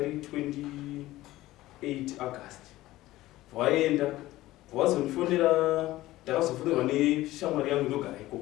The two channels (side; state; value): right; quieter; 16.7 dB